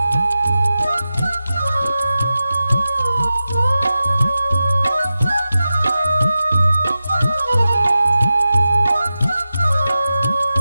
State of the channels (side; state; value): both; inverted; correlation -0.93